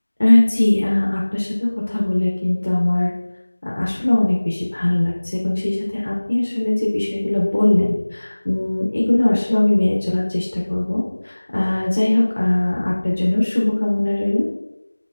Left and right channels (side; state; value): both; inverted; correlation -1.00